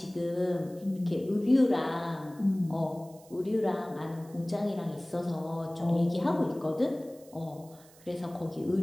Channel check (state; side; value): noise; right; hiss, 25 dB below the sound